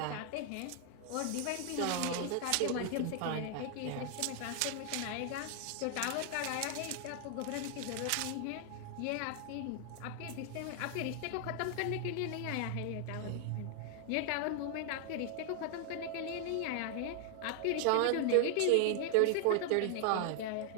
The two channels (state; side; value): different; both; correlation 0.00